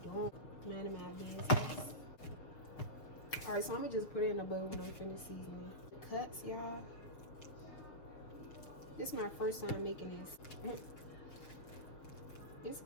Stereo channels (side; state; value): right; late; 6.6 ms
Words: doing? None of my business. Alright, so I'm gonna just put it in a bowl when I'm finished seasoning. The cuts, y'all. This is my first time making this. It's